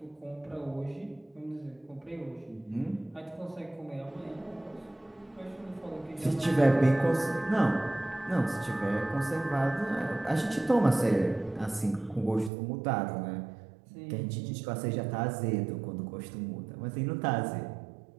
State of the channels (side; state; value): left; drops out; at 12.5 s